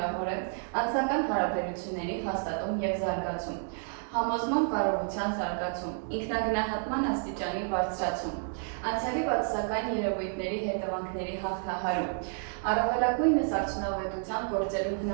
է անձնական հարաբերությունների հաստատում եւ զարգացում, համոզման կարողության զարգացում, ինքնագնահատման աստիճանի բարձրացում, անցյալի բացասական երևույթների հետևանքների հաղթահարում, առավելագույնս արդյունավետության գործելու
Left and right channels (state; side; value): silent; left; 57 dB below the other